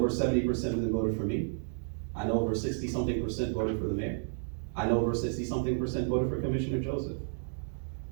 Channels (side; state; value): left; silent; digital silence